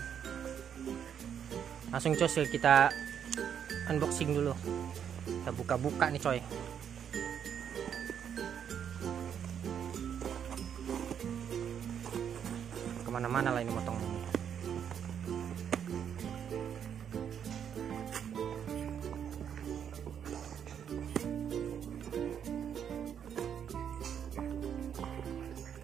Langsung coy, kita unboxing dulu. Kita buka-buka nih coy. Kemana-mana lah ini motong.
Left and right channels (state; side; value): quieter; left; 8.4 dB